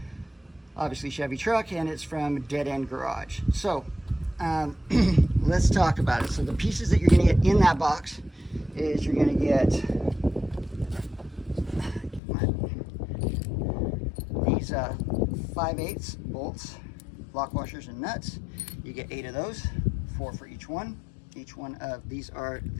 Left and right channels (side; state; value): right; drops out; at 12.2 s